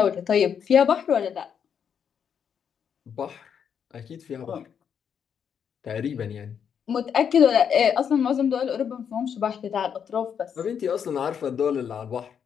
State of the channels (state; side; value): quieter; right; 7.7 dB